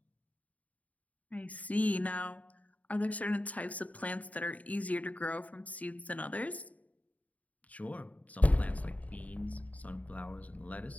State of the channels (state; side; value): late; right; 0.070 ms